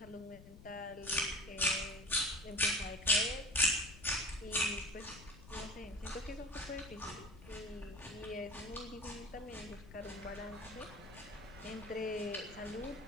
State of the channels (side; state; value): left; noise; rumble, 17 dB below the sound